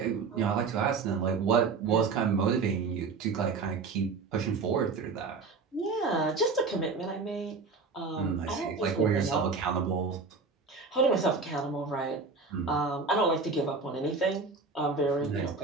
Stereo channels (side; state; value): left; quieter; 4.5 dB